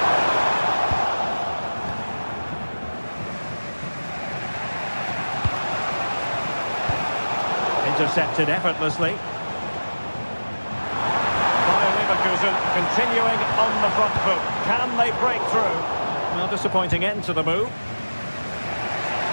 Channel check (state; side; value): inverted; both; correlation -1.00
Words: Intercepted effortlessly. Continuing on the front foot. Can they break through? Well, disappointing end to the move.